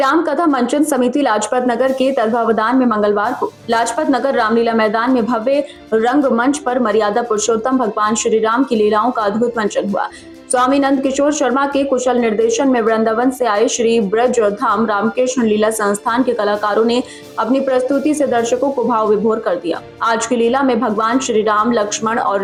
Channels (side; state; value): both; identical; correlation 1.00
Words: कथा मंचन समिति लाजपत नगर के तत्वावधान में मंगलवार को लाजपत नगर रामलीला मैदान में भव्य रंग मंच पर मर्यादा पुरुषोत्तम भगवान श्री राम की लीलाओं का अद्भुत मंचन हुआ। स्वामी नंद किशोर शर्मा के कुशल निर्देशन में वृंदावन से आए श्री ब्रज धाम रामकृष्ण लीला संस्थान के कलाकारों ने अपनी प्रस्तुति से दर्शकों को भाव विभोर कर दिया। आज की लीला में भगवान श्री राम लक्ष्मण